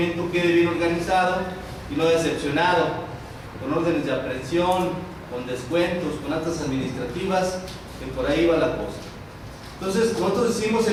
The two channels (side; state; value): both; identical; correlation 1.00